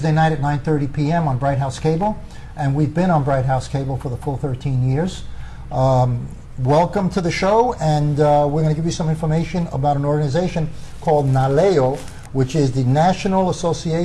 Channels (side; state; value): both; identical; correlation 1.00